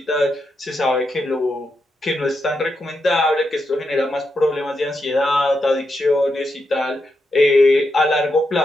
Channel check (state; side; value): normal; both; correlation 0.84